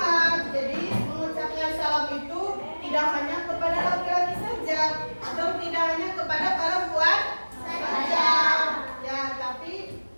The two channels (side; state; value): both; inverted; correlation -1.00